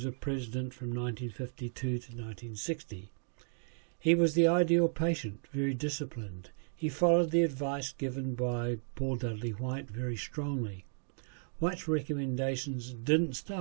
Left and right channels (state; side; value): silent; left; digital silence